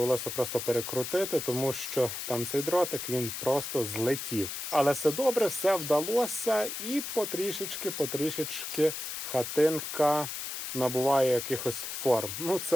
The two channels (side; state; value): left; noise; hiss, 5 dB below the sound